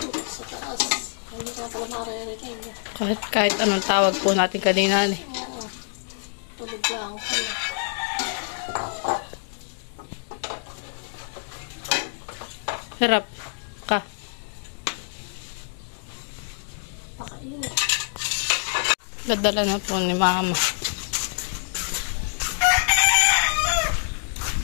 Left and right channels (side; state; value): right; silent; digital silence